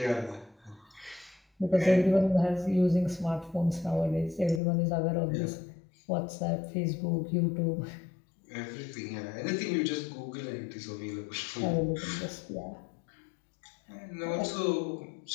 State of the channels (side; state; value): right; drops out; at 4.6 s